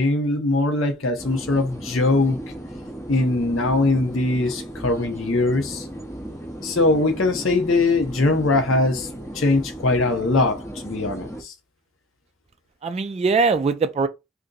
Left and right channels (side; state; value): both; normal; correlation 0.42